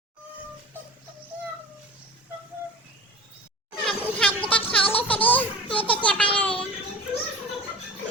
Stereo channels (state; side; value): normal; both; correlation 0.38